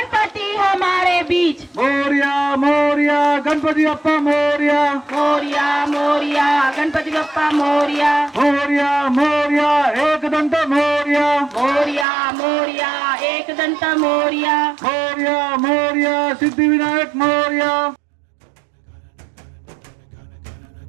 हमारे बीच मोरिया मोरिया गणपति बाप्पा मोरिया मोरिया मोरिया गणपति बप्पा मोरिया मोरिया मोरिया एक दंत मोरिया मोरिया मोरिया एक दंत Moriya Moriya Moriya Siddhi Vinayak Moriya.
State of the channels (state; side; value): drops out; left; at 12.1 s